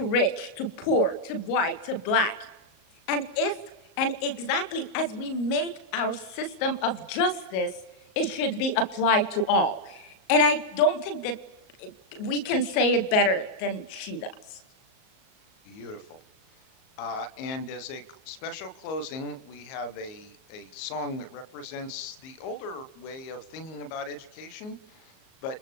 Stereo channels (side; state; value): right; late; 38 ms